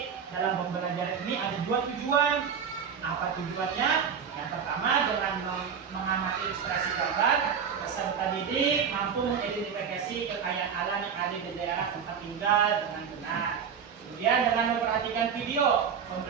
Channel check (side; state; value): left; quieter; 7.1 dB